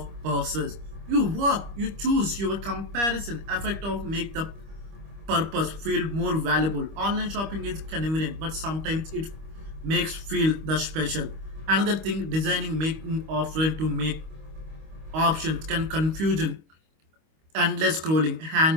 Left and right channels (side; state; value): left; late; 25 ms